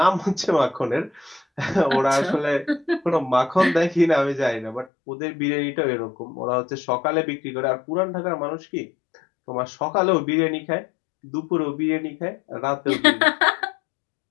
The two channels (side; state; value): right; drops out; at 4.9 s